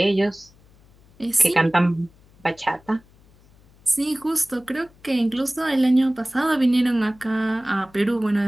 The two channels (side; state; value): left; noise; hum, 29 dB below the sound